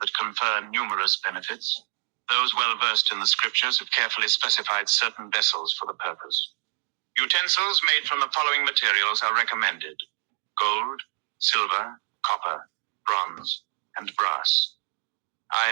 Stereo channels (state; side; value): silent; left; 61 dB below the other